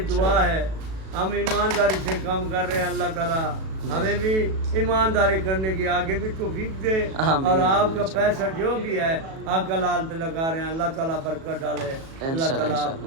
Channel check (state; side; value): late; left; 37 ms